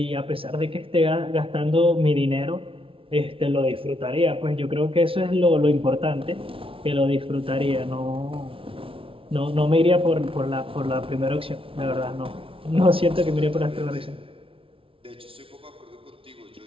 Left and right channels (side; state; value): left; late; 0.26 ms